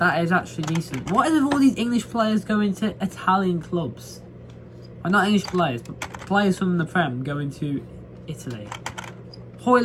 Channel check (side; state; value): both; identical; correlation 1.00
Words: actually decent. What is with all these English players going to Italian clubs? Well, not English players, but players from the Prem going to Italy.